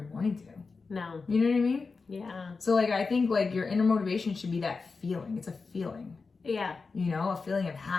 morning to. No. You know what I mean? Yeah. So I think your inner motivation should be that feeling. It's a feeling. Yeah. A feeling of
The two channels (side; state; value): right; quieter; 4.4 dB